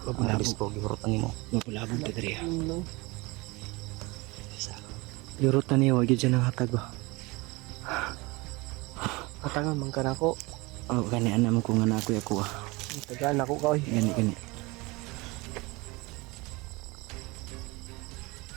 Mabulabog. Ang bisko, gihurotan nimo. Mapulabog ta diri. Ano? Isa. Yurot na niya. Wag yun dyan ang hatag ba. Katangan man ka na ako. Oh, gani anak mo kung anak ako ah. Tagaan ako ka oy. Gani.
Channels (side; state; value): left; quieter; 24.4 dB